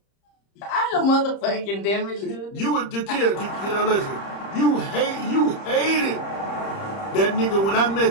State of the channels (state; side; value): late; right; 30 ms